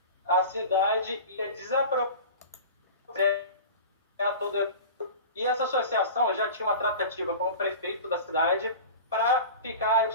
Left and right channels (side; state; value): both; inverted; correlation -0.34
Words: a cidade ia desapropriar toda. E essa associação já tinha uma tratativa com o prefeito da cidade para ficar